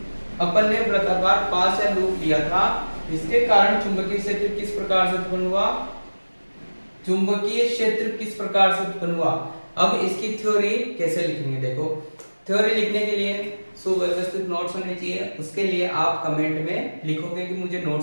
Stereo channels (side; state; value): both; inverted; correlation -1.00